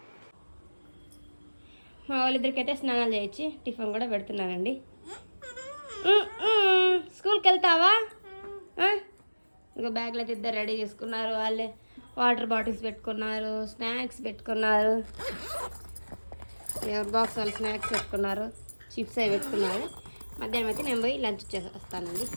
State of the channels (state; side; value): inverted; both; correlation -1.00